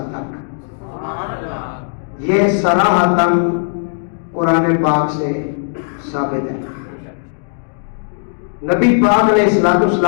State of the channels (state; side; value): silent; right; digital silence